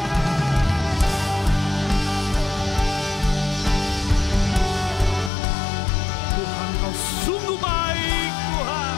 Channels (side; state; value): right; drops out; at 5.3 s